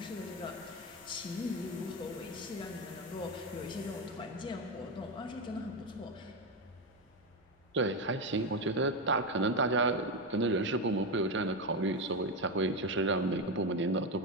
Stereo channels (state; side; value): normal; both; correlation 0.13